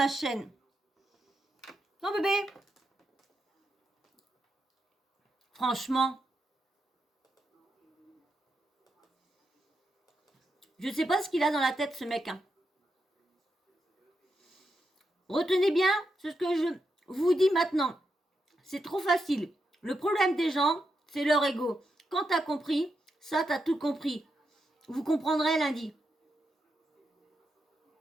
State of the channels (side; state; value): both; normal; correlation 0.85